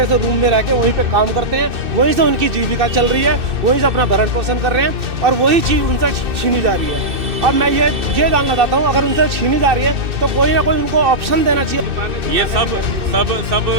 से रूम में रह के वहीं पे काम करते हैं, वहीं से उनकी जीविका चल रही है, वहीं से अपना भरण पोषण कर रहे हैं और वही चीज़ उनसे छीनी जा रही है। अब मैं ये जानना चाहता हूँ, अगर उनसे छीनी जा रही है तो कोई ना कोई उनको ऑप्शन देना चाहिए। ये सब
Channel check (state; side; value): late; left; 2.6 ms